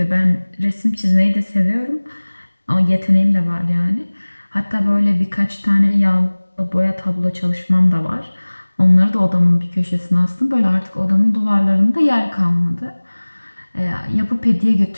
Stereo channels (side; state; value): both; inverted; correlation -1.00